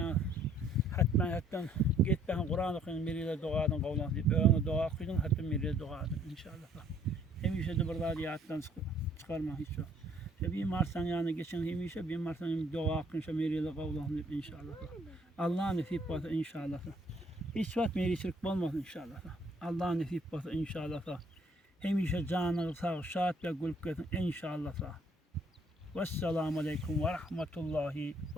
gitbeyken Kur'an okuyun bir yıl doğadın kavlan deyip ölün doğa okuyun. Hatmen bir yıl doğadın inşallah. Hemişe de bir radiyattan çıkarma hiç yok. Bir marsan yani geçen hemişe bir marsan doğa okuyunca bir yıl kavlan deyip inşallah. Allah nasip basa inşallah. Hiç vakit meri şirk olmasın inşallah. Allah nasip basa inşallah. Hemişe canı sağ, şahat ve gülük etsin inşallah. Vesselamu aleyküm ve rahmetullahi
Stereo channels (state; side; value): normal; both; correlation 0.62